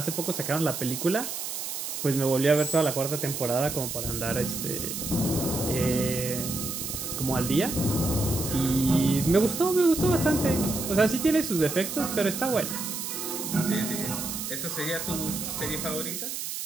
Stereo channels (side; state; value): right; noise; hiss, 5 dB below the sound